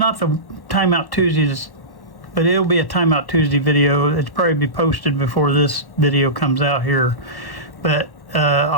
the Time Out Tuesdays, but it'll be a Time Out Tuesday video. It's probably be posted before this video comes out here. But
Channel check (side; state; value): right; late; 1.1 ms